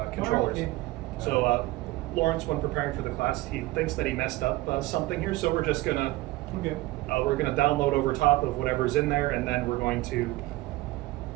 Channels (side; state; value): left; quieter; 18.9 dB